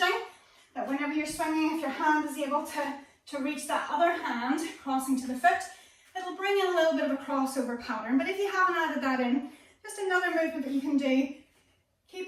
that whenever you're swinging, if your hand is able to reach that other hand, crossing to the foot, it'll bring in a little bit of a crossover pattern. But if you haven't added that in, just another movement that you can do,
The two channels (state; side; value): identical; both; correlation 1.00